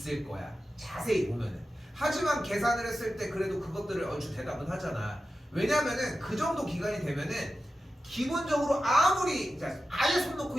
거야. 자세히 보면은. 하지만 계산을 했을 때 그래도 그것들을 얼추 대답은 하잖아. 왜냐면은 그 정도 기간이 되면은 기본적으로 아무리 아예 손 놓고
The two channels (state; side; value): normal; both; correlation 0.92